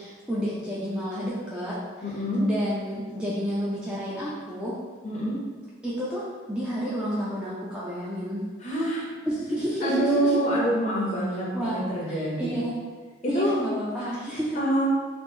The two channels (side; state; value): both; normal; correlation 0.56